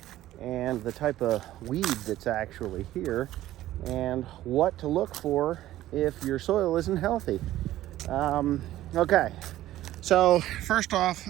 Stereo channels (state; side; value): quieter; left; 14.4 dB